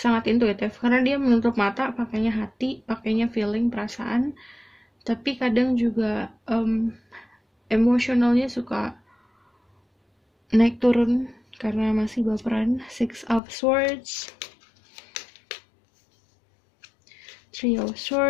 intuitif, karena dia menutup mata, pakainya hati, pakainya feeling, perasaan. Tapi kadang juga emosionalnya suka naik turun karena masih baperan. Six of Swords, Three of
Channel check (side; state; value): right; drops out; at 13.4 s